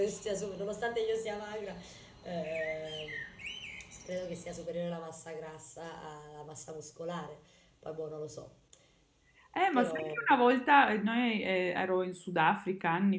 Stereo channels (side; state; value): both; identical; correlation 1.00